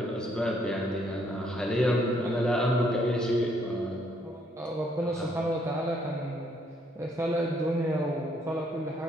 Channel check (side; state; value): both; normal; correlation 0.69